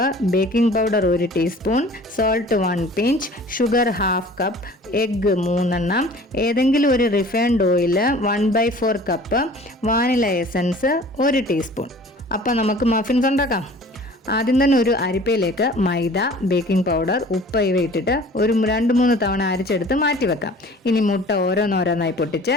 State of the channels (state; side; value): normal; both; correlation 0.47